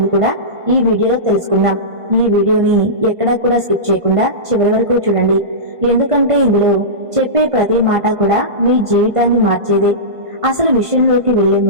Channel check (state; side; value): late; left; 1.5 ms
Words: కూడా ఈ వీడియోలో తెలుసుకుందాం. ఈ వీడియోని ఎక్కడా కూడా స్కిప్ చేయకుండా చివరి వరకు చూడండి. ఎందుకంటే ఇందులో చెప్పే ప్రతి మాట కూడా మీ జీవితాన్ని మార్చేదే. అసలు విషయంలోకి వెళ్లే